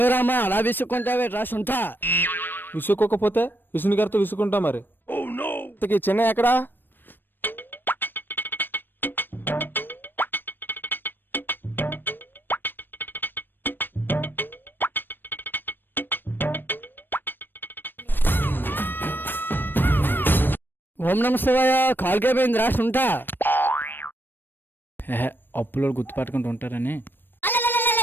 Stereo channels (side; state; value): right; late; 0.095 ms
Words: రామా, అలా విసుక్కుంటావే రా సొంత. విసుక్కోకపోతే విసుని గారితో విసుకుంటా మరి. చిన్న ఎక్కడా? ఓం నమ శివాయ. కాల్కే పోయింది రా సొంత. అప్పులో గుర్తుపట్టుకుంటూ ఉంటారని.